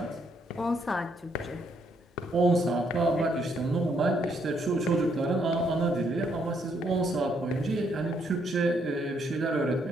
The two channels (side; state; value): both; normal; correlation 0.72